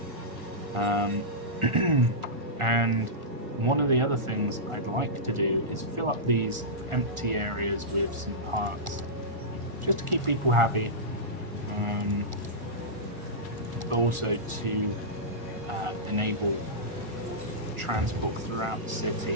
And one of the other things I'd like to do is fill up these empty areas with some parks, just to keep people happy, but also to enable transport throughout the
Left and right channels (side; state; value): left; late; 1.4 ms